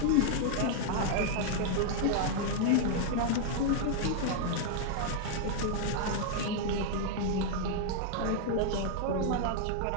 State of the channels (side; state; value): both; different; correlation 0.00